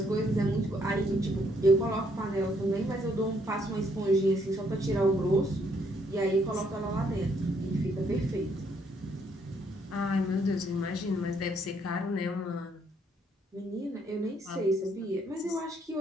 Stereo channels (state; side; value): normal; both; correlation 0.70